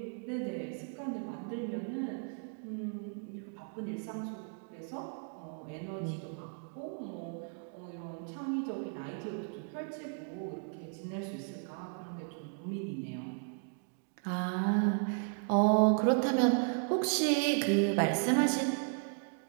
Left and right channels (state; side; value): silent; left; 54 dB below the other